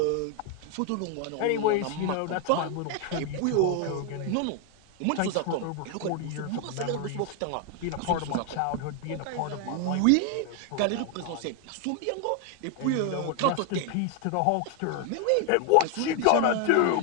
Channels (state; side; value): different; both; correlation 0.01